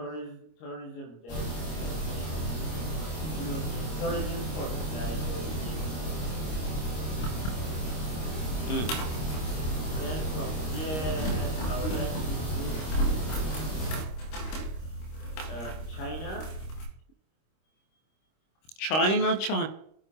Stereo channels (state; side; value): late; right; 26 ms